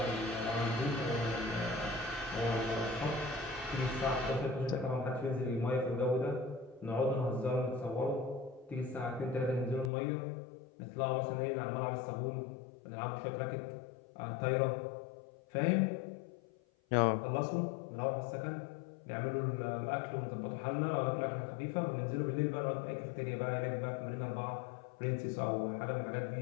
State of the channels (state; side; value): drops out; right; at 9.9 s